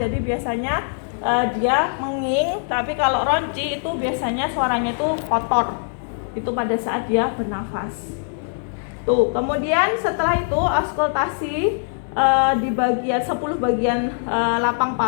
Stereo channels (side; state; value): right; silent; digital silence